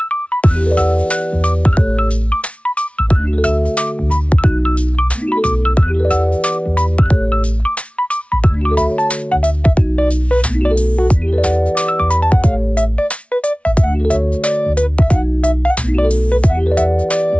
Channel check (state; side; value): late; right; 0.062 ms